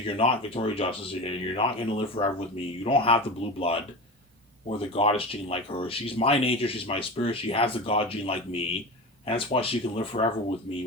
You're not Victoria Justice. You're not going to live forever with me. You don't have the blue blood or the goddess gene like her. She's my nature. She's my spirit. She has the god gene like me. And that's why she can live forever with me,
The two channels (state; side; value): normal; both; correlation 0.28